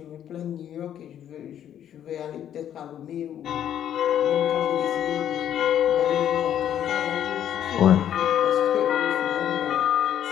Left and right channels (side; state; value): right; quieter; 10.2 dB